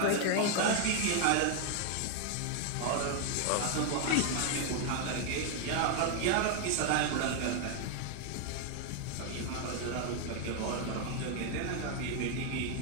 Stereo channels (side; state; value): both; different; correlation 0.00